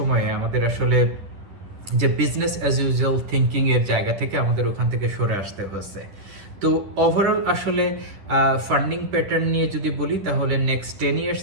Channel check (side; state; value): left; late; 10 ms